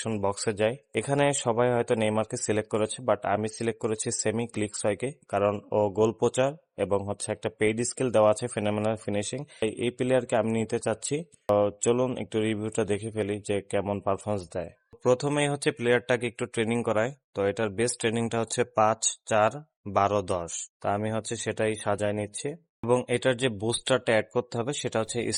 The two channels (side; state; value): both; identical; correlation 1.00